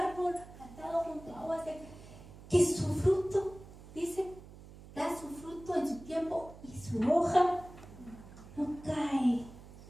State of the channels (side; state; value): right; noise; hum, 18 dB below the sound